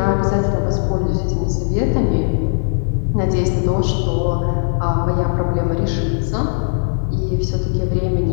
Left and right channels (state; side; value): silent; right; digital silence